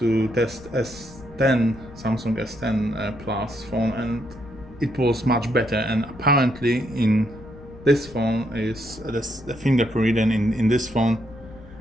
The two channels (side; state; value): left; noise; rumble, 19 dB below the sound